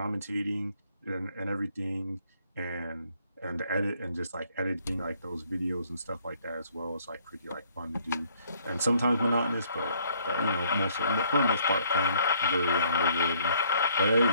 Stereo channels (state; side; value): inverted; both; correlation -0.64